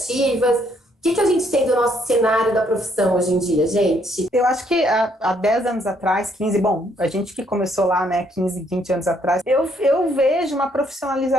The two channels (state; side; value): normal; both; correlation 0.69